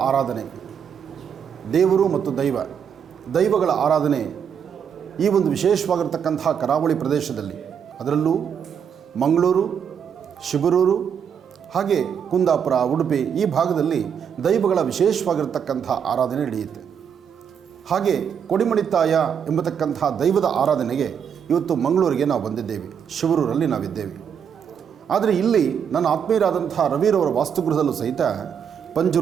ಆರಾಧನೆ, ದೇವರು ಮತ್ತು ದೈವಗಳ ಆರಾಧನೆ ಈ ಒಂದು ವಿಶೇಷವಾಗಿರ್ತಕ್ಕಂಥ ಕರಾವಳಿ ಪ್ರದೇಶದಲ್ಲಿ, ಅದರಲ್ಲೂ ಮಂಗಳೂರು, ಶಿಬರೂರು, ಹಾಗೆ ಕುಂದಾಪುರ, ಉಡುಪಿ ಈ ಭಾಗದಲ್ಲಿ ದೈವಗಳ ವಿಶೇಷವಾಗಿರ್ತಕ್ಕಂಥ ಆರಾಧನೆ ನಡೆಯುತ್ತೆ. ಹಾಗೆ ಕೊಡಿಮಣಿತಾಯ ಎಂಬತಕ್ಕಂಥ ದೈವದ ಆರಾಧನೆಗೆ ಇವತ್ತು ಮಂಗಳೂರಿಗೆ ನಾವು ಬಂದಿದ್ದೇವೆ, ಶಿಬರೂರಲ್ಲಿ ನಾವಿದ್ದೇವೆ. ಆದರೆ ಇಲ್ಲಿ ನನ್ನ ಆತ್ಮೀಯರಾದಂಥ ರವಿರವರ ವಾಸ್ತುಗೃಹದಲ್ಲೂ ಸಹಿತ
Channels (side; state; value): left; quieter; 7.7 dB